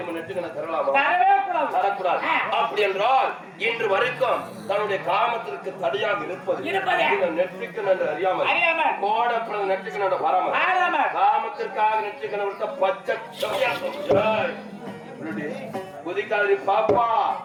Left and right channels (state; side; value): identical; both; correlation 1.00